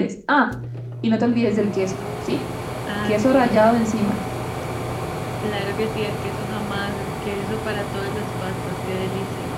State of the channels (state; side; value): identical; both; correlation 1.00